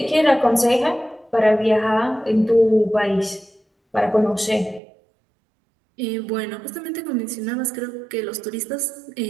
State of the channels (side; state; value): left; drops out; at 4.8 s